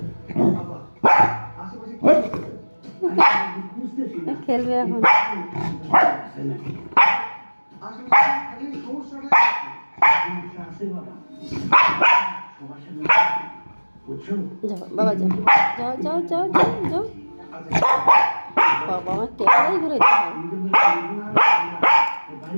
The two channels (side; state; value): both; inverted; correlation -1.00